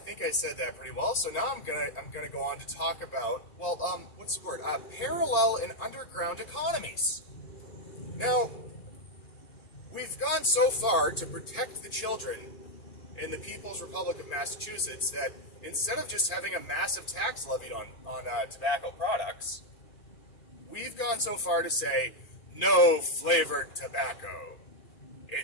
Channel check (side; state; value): right; late; 2.4 ms